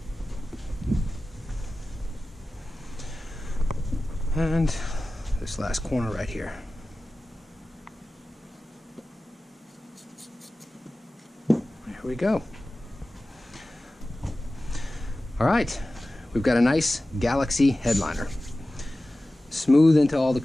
And this last corner right here. There we go. All right, we've got a nice Galaxy headliner. Smooth into all the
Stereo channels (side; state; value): both; normal; correlation 0.96